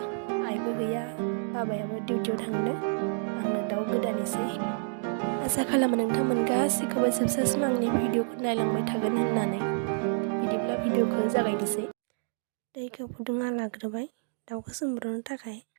आइबो गैया, बाबायाबो डिउटियाव थांदों। आंनो दाउ गोदानैसै। आसा खालामो नोंथांमोन गासैखौबो जोबजासिम आंनि भिडिअखौ नायलांबाय थागोन होननानै। बिदिब्ला भिडिअखौ जागायनोसै। दैखौ फुदुंना लाग्रोबाय दाउखौ सोमब्रनो थाखाय।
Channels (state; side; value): silent; left; digital silence